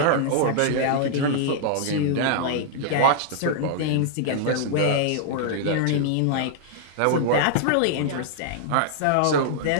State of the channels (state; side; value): different; both; correlation -0.01